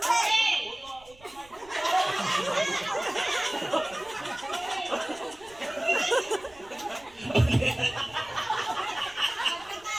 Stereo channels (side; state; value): right; noise; rumble, 25 dB below the sound